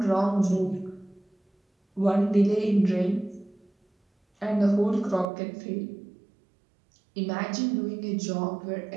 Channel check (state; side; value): drops out; left; at 5.2 s